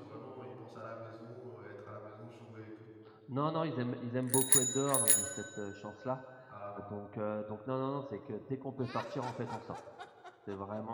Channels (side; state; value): both; identical; correlation 1.00